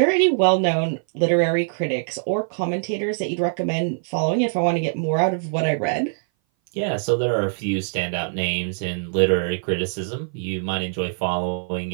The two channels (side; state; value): left; silent; 59 dB below the other